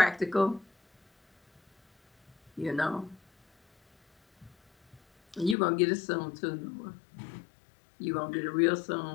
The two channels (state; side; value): drops out; right; at 5.6 s